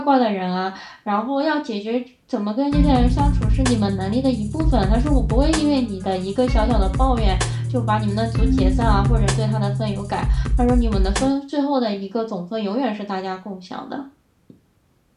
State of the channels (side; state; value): both; identical; correlation 1.00